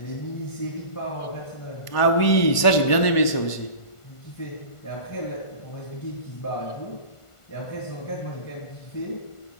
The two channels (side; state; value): right; late; 1.5 ms